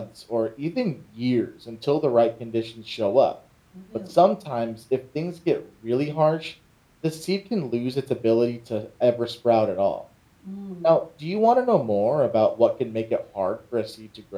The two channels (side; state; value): both; identical; correlation 1.00